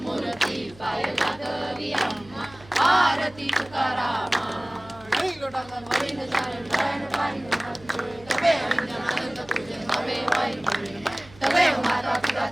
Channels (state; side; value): noise; right; hum, 22 dB below the sound